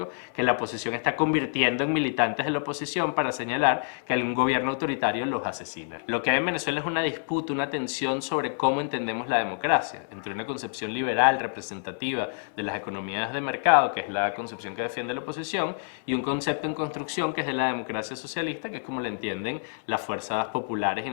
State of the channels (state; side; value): silent; right; digital silence